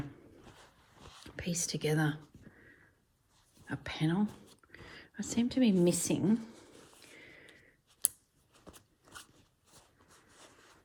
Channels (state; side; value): identical; both; correlation 1.00